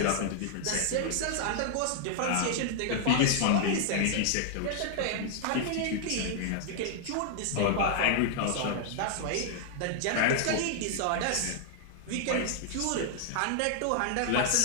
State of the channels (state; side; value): different; both; correlation -0.01